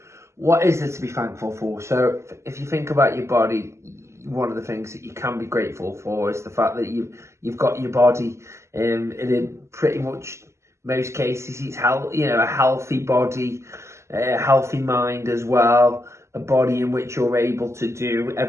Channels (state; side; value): late; left; 0.13 ms